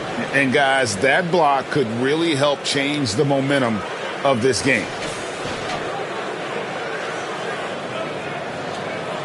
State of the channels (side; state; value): both; identical; correlation 1.00